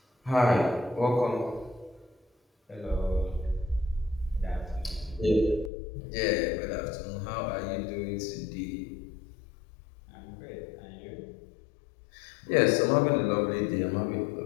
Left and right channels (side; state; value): right; drops out; at 5.7 s